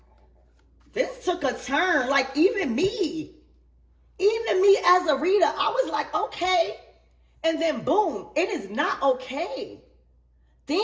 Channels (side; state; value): both; identical; correlation 1.00